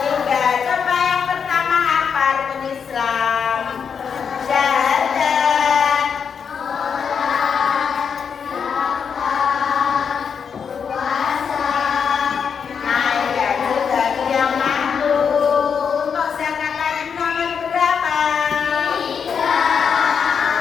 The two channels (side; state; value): right; quieter; 6.7 dB